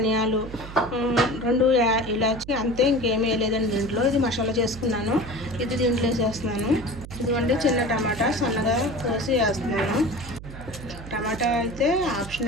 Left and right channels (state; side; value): noise; right; hum, 13 dB below the sound